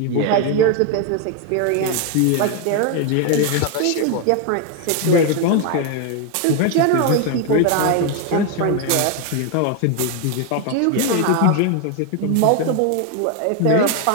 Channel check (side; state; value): both; different; correlation 0.01